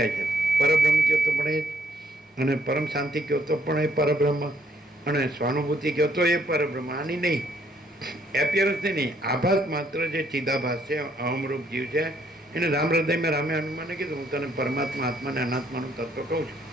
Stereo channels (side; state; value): both; normal; correlation 0.67